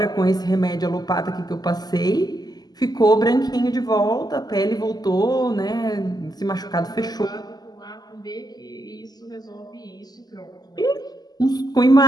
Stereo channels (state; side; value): late; right; 0.20 ms